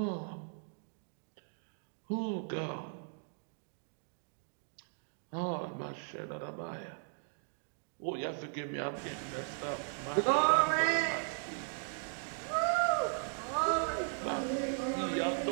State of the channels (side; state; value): left; silent; 53 dB below the other